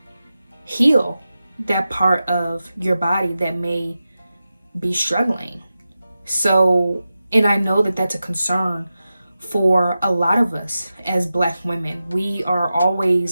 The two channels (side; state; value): both; inverted; correlation -0.92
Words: heal that part of your body that may be struggling. So, and I know that that's a concern for a lot of us as Black women. We are